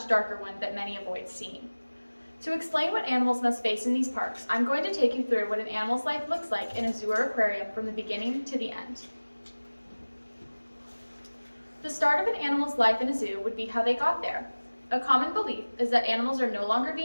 darker one that many avoid seeing. To explain what animals must face in these parks, I'm going to take you through what an animal's life looks like in a zoo or aquarium from the beginning to the end. The start of an animal's life in a zoo would be how they got there. A common belief is that animals are no longer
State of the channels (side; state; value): both; inverted; correlation -1.00